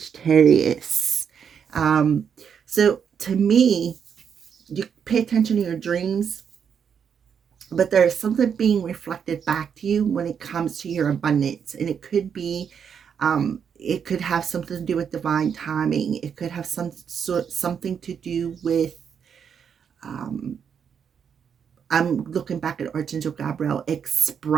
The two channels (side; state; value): left; quieter; 7.4 dB